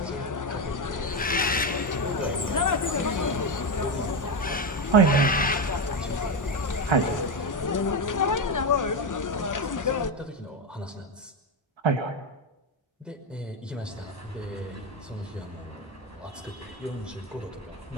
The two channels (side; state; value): both; normal; correlation 0.11